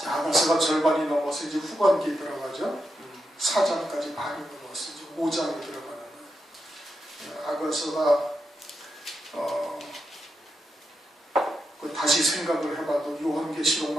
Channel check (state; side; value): normal; both; correlation 0.85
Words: 아가서가 절반이 넘어서 이제 후반기에 들어가죠. 4장까지 반이 넘어서 이제 5장에 들어가는 아가서가 다시 생각을 해봐도